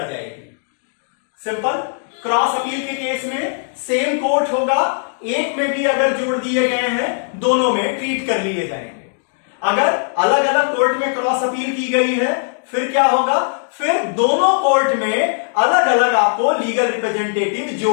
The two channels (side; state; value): right; silent; digital silence